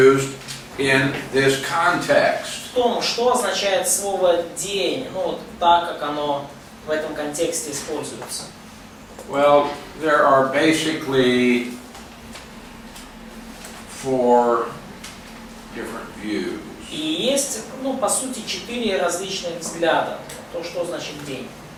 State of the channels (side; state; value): both; identical; correlation 1.00